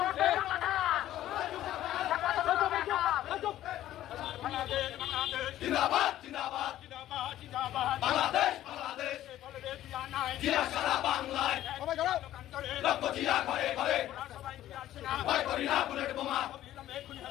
জিন্দাবাদ জিন্দাবাদ জিন্দাবাদ বাংলাদেশ বাংলাদেশ জিয়া সারা বাংলায় লক্ষ জিয়া ঘরে ঘরে ভয় করি না বুলেট বোমা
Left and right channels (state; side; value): quieter; right; 13.3 dB